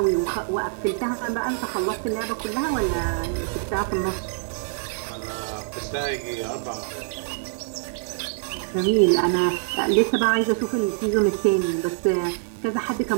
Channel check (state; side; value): silent; left; digital silence